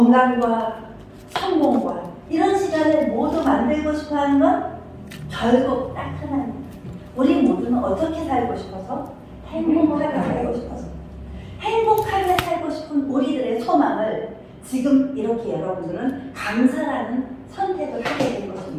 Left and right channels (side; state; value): both; identical; correlation 1.00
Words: 성공과 이런 시간을 모두 만들고 싶어하는 건 결국 딱 하나입니다. 우리 모두는 어떻게 살고 싶어서? 행복하게 살고 싶어서. 행복하게 살고 싶은 우리들의 소망을 지금 이렇게 여러분들은 강사라는 선택을 하게 된